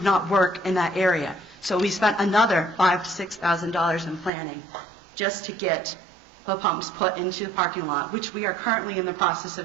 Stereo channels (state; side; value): drops out; left; at 4.3 s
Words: not work in that area. So we spent another $5,000 to $6,000 in planning just to get the pumps put into the parking lot, which we are currently in the process